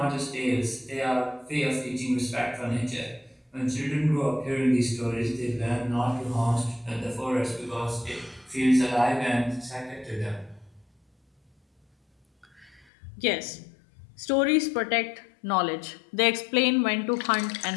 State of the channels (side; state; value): right; drops out; at 12.9 s